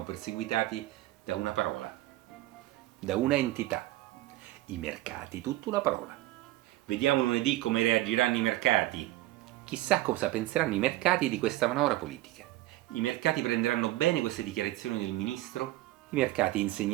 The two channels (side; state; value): left; quieter; 16.6 dB